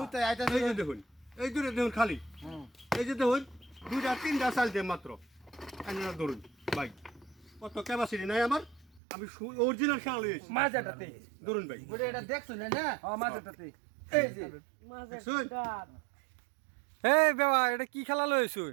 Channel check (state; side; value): drops out; left; at 9.0 s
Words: আইতাছে এই যে দেখুন এই দুটো দেখুন খালি এই যে দেখুন দুইটা তিনটা চাল দিয়ে মাত্র আনেরা ধরুন ভাই কত ক্যাপাসিটি নাই আমার আমি অরিজিনাল শাল লইছি মাঝাটাতে ধরুন ভাই ওরে এটা দেখছুন না হ্যাঁ মাঝাটাতে এই যে দেখছুন এ বাবা এটা কি খেলা